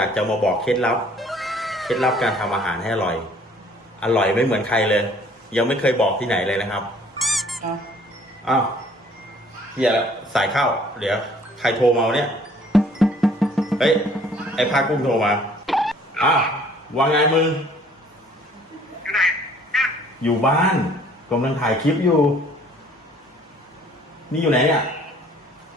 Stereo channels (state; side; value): normal; both; correlation 0.57